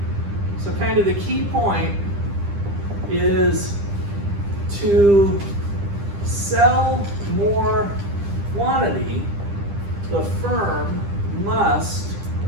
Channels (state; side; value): late; left; 10 ms